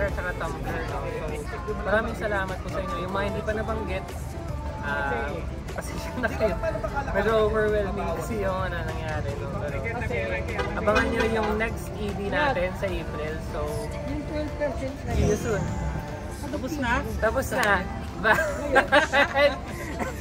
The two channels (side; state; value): both; identical; correlation 1.00